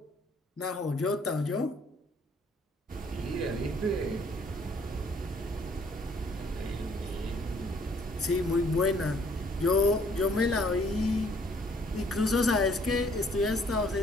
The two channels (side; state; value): both; normal; correlation 0.62